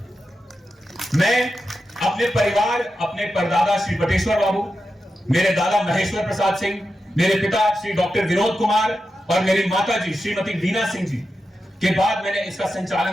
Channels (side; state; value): both; normal; correlation 0.89